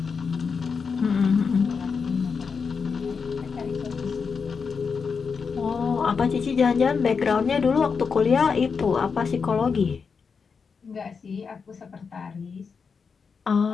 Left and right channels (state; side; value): quieter; right; 5.5 dB